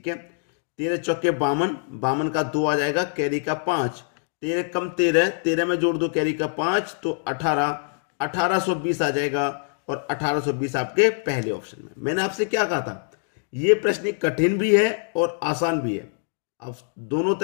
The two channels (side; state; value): right; silent; digital silence